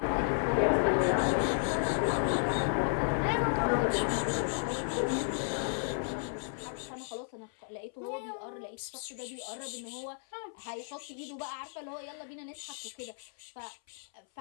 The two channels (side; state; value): right; silent; 56 dB below the other